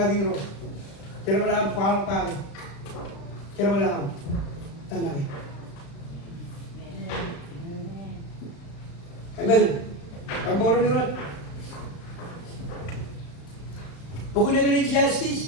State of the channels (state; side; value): late; right; 35 ms